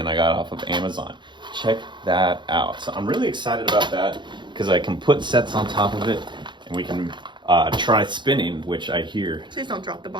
I got off of Amazon. Check that out. So I'm really excited about that because I can put sets on top of it, and we can try spinning, which I hear Please don't drop the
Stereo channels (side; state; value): left; late; 0.22 ms